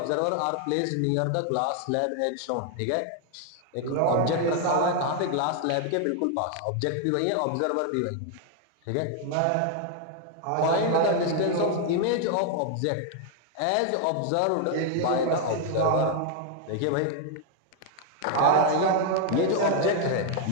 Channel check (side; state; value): both; different; correlation 0.00